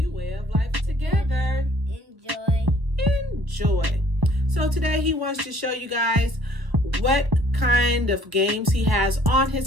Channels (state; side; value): late; left; 1.1 ms